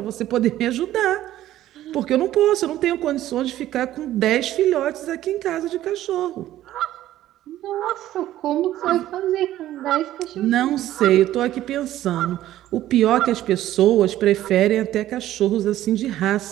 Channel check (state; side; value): quieter; left; 13.6 dB